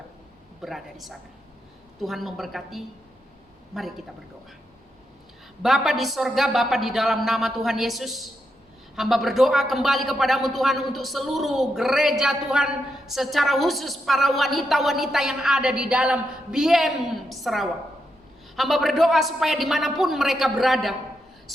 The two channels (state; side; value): normal; both; correlation 0.83